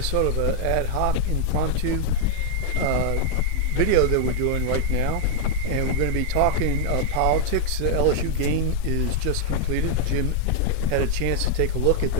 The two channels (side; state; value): both; different; correlation 0.00